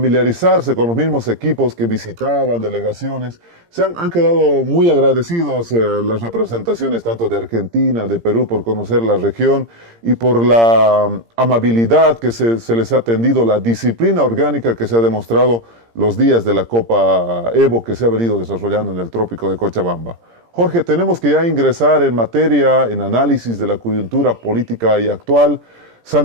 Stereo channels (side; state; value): left; late; 17 ms